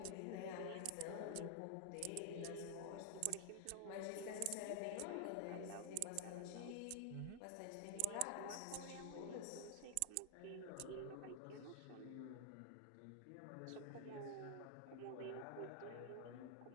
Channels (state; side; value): different; both; correlation 0.00